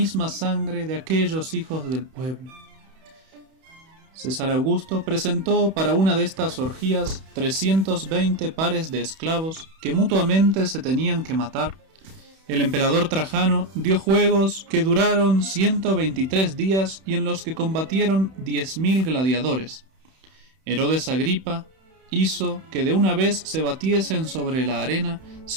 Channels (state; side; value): late; left; 31 ms